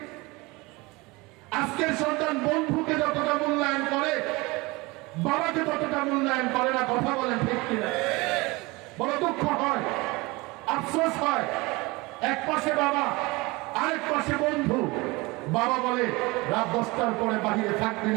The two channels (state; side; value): quieter; left; 23.7 dB